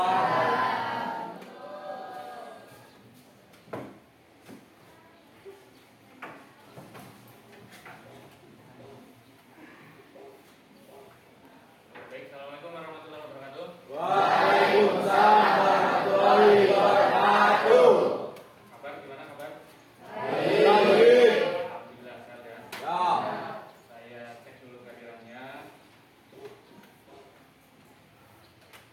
Baik, assalamualaikum warahmatullahi wabarakatuh. Waalaikumsalam warahmatullahi wabarakatuh. Kabar gimana kabar? Baik. Alhamdulillah sehat ya. Ya. Saya cek dulu kehadirannya.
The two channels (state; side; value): identical; both; correlation 1.00